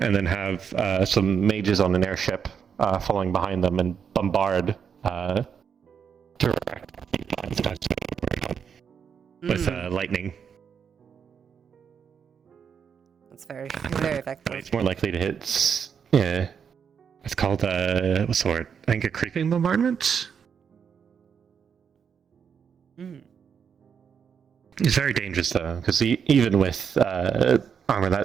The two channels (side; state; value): left; quieter; 7.1 dB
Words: then have some mages on an airship following behind them and bombard with lightning. It's very, very effective. It's more likely to hit. Yeah, it's called what's the word? I think a creeping bombardment. It's very dangerous though, because even with armor